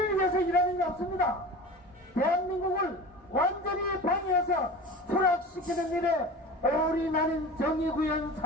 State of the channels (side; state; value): both; normal; correlation 0.34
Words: 위해서 일하는 게 없습니다. 대한민국을 완전히 방해해서 추락시키는 일에 올인하는 정의구현